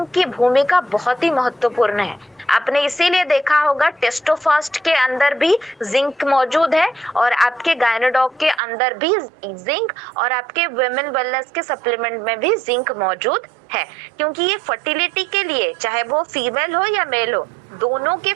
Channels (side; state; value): left; drops out; at 8.6 s